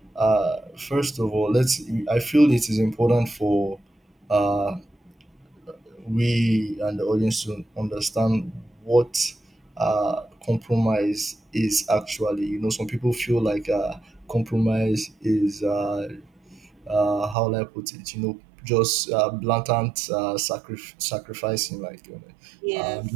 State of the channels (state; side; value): drops out; left; at 17.4 s